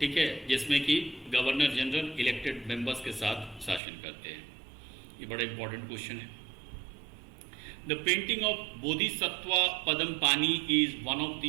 है, जिसमें कि गवर्नर जनरल इलेक्टेड मेंबर्स के साथ शासन करते हैं। ये बड़ा इंपॉर्टेंट क्वेश्चन है। The painting of Bodhisattva Padampani is one of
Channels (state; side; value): drops out; left; at 3.8 s